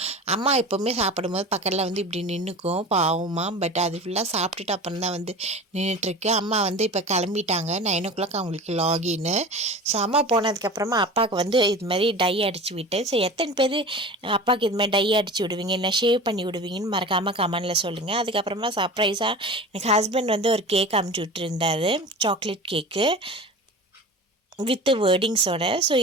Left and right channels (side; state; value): both; normal; correlation 0.35